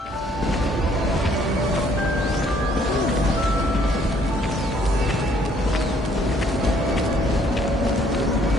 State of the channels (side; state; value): both; normal; correlation 0.64